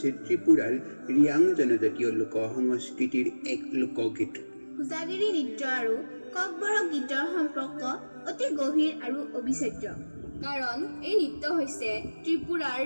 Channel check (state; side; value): inverted; both; correlation -1.00